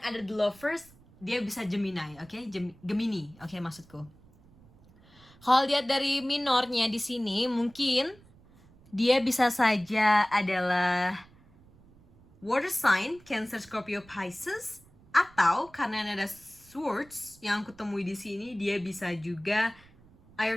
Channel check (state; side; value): noise; right; rumble, 26 dB below the sound